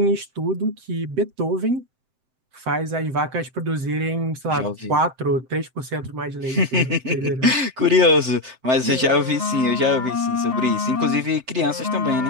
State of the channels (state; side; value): late; left; 7.8 ms